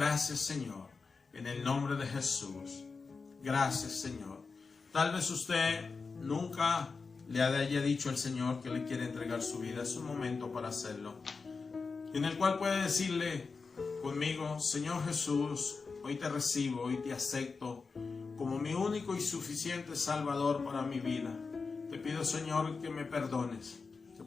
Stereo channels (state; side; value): quieter; right; 4.6 dB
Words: Señor, en el nombre de Jesús. Gracias, Señor. Tal vez usted nunca le haya dicho al Señor que le quiere entregar su vida. Es un momento para hacerlo, en el cual puede decirle conmigo: Señor Jesús, hoy te recibo, hoy te acepto como mi único y suficiente Salvador para mi vida. Te pido, Señor, que me perdones, que